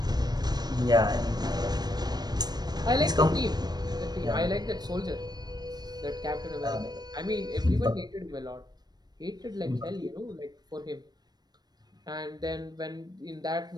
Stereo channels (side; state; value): left; late; 0.19 ms